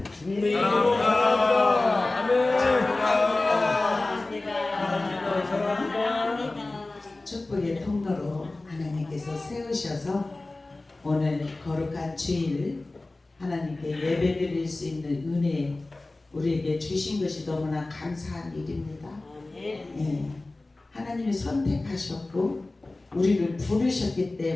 주님의 이름으로 사랑합니다. 아멘. 사랑합니다. 축복의 통로로 하나님께서 세우셔서 오늘 거룩한 주일 하나님께 예배드릴 수 있는 은혜 우리에게 주신 것이 너무나 감사한 일입니다. 예, 하나님이 선택하셨고 우리를 부르셨기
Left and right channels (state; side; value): quieter; right; 3.0 dB